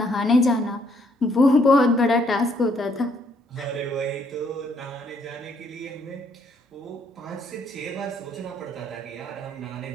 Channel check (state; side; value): normal; both; correlation 0.69